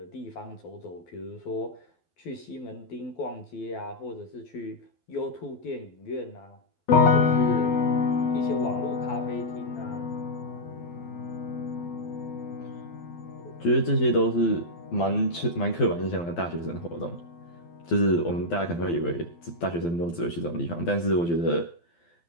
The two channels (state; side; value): late; right; 12 ms